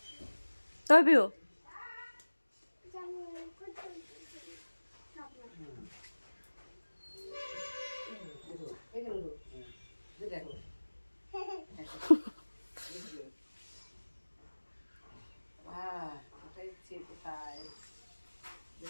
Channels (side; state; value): both; inverted; correlation -1.00